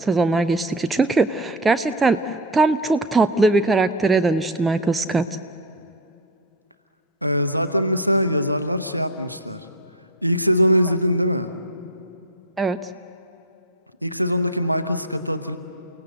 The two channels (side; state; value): both; normal; correlation 0.11